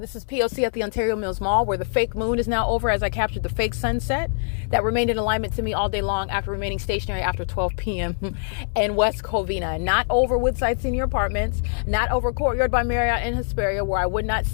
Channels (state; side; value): silent; right; 63 dB below the other